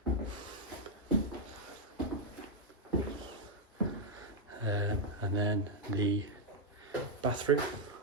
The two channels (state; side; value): normal; both; correlation -0.02